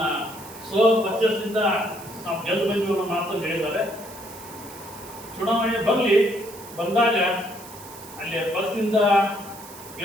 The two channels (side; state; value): right; noise; hiss, 17 dB below the sound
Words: ಪರ್ಚೇಸ್ನಿಂದ ನಾವು ಗೆದ್ದು ಬಂದಿವಿ ಅನ್ನೋ ಮಾತನ್ನು ಹೇಳಿದ್ದಾರೆ. ಚುನಾವಣೆ ಬಂದಾಗ ಅಲ್ಲಿ ಪಕ್ಷದಿಂದ